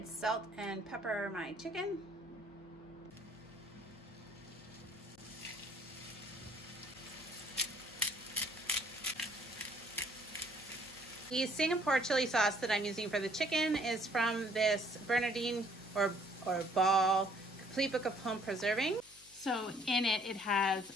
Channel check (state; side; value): noise; left; hum, 27 dB below the sound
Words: salt and pepper my chicken. The Singapore chili sauce that I'm using for the chicken is from this Bernardine or Ball Complete Book of Home Preserving. So in it, it has